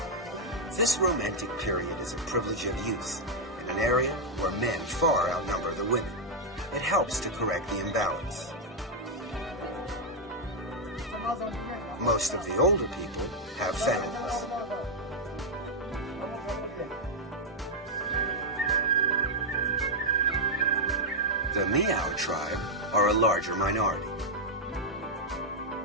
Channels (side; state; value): both; normal; correlation -0.03